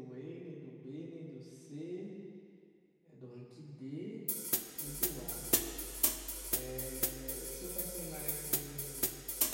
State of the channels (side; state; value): both; identical; correlation 1.00